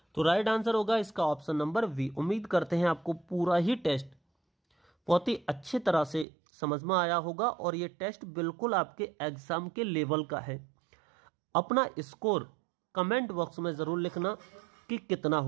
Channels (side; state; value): left; drops out; at 6.2 s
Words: तो राइट आंसर होगा इसका ऑप्शन नंबर बी। उम्मीद करते हैं आपको पूरा ही टेस्ट बहुत ही अच्छी तरह से समझ में आया होगा और ये टेस्ट बिल्कुल आपके एग्जाम के लेवल का है। अपना स्कोर कमेंट बॉक्स में जरूर लिखना कि कितना